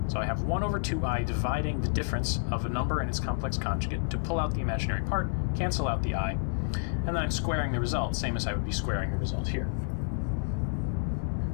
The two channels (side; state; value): right; silent; 58 dB below the other